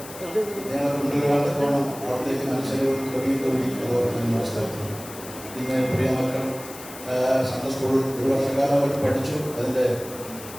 ഞങ്ങൾ കൊണ്ടുവരുവാൻ തക്കോണം അവിടത്തേക്ക് മനുഷ്യരും കവിയും അതുപോലെ മനസ്സിലാക്കുന്നു. നിങ്ങൾ പ്രിയ മക്കൾ സൺഡേ സ്കൂൾ ഒരു വർഷക്കാലം അവർ പഠിച്ചു. അതിൻ്റെ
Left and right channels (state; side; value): noise; left; hiss, 14 dB below the sound